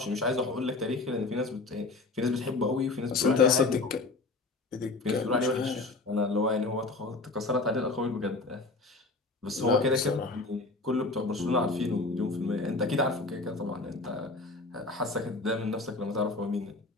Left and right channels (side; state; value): right; quieter; 3.4 dB